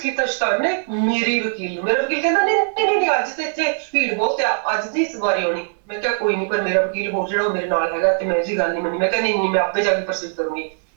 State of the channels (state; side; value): silent; left; 65 dB below the other